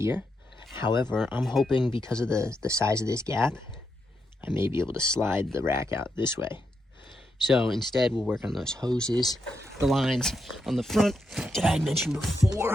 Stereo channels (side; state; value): both; normal; correlation 0.84